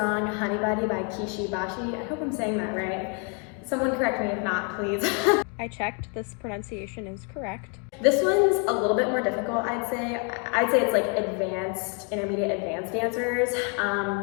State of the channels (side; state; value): right; quieter; 37.5 dB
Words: Honeybody by Kishi, Bashi. I hope I'm saying that right. Someone correct me if not, please. I checked, this pronunciation is correct. This one's a little bit more difficult, I'd say. I'd say it's like advanced, intermediate, advanced dancers.